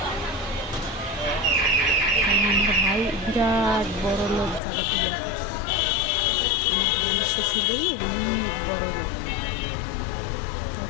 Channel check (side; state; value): right; drops out; at 4.6 s